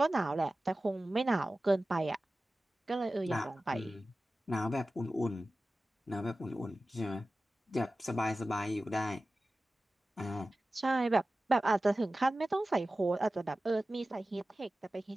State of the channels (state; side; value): normal; both; correlation 0.96